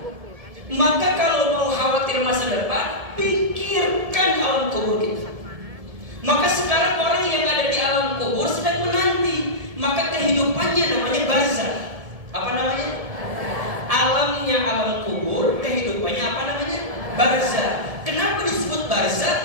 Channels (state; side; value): late; left; 1.7 ms